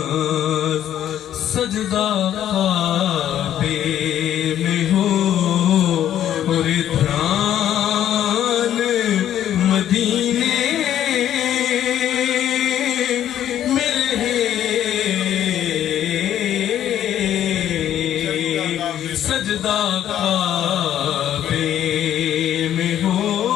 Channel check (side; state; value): right; quieter; 11.0 dB